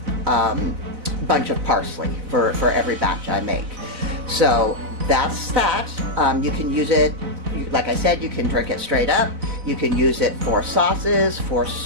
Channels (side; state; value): left; late; 4.0 ms